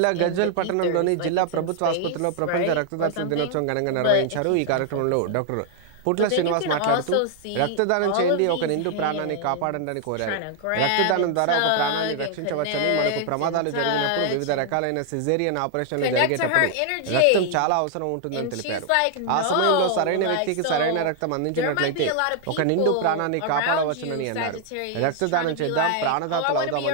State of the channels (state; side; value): different; both; correlation 0.00